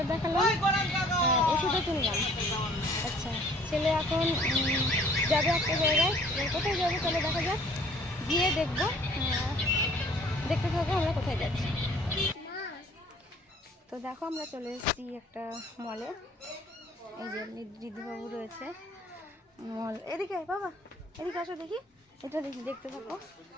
দেখালাম, ওষুধও কিনলাম। আচ্ছা, ছেলে এখন যাবে একটা জায়গায়, কোথায় যাবে চলো দেখা যাক, গিয়ে দেখবো। দেখতে থাকবো আমরা কোথায় যাচ্ছি। তো দেখো আমরা চলে এসেছি একটা মলে। এই যে ঋদ্ধিবাবু রয়েছে মল। এদিকে বাবা, এদিকে আসো দেখি, এটা দেখি, দেখতে থাকো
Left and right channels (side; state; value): both; normal; correlation 0.55